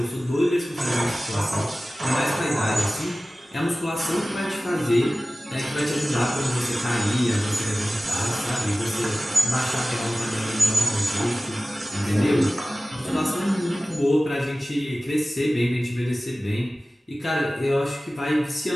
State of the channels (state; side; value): normal; both; correlation 0.96